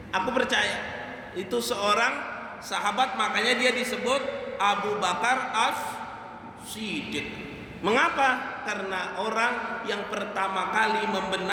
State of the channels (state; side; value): identical; both; correlation 1.00